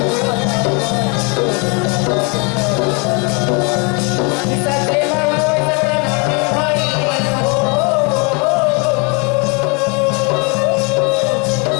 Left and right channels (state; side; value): quieter; right; 32.7 dB